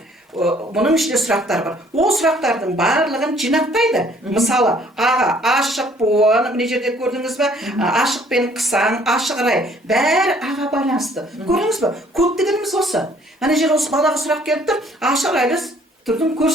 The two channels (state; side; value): normal; both; correlation 0.60